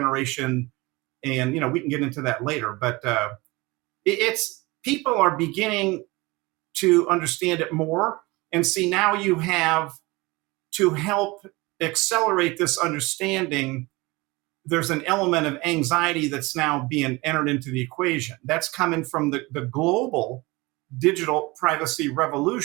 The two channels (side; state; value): left; quieter; 23.3 dB